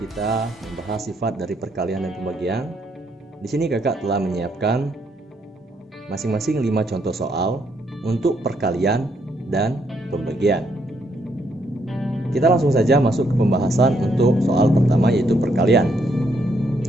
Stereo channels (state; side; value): normal; both; correlation 0.74